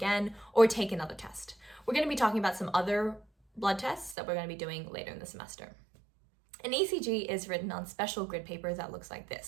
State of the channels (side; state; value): left; drops out; at 4.2 s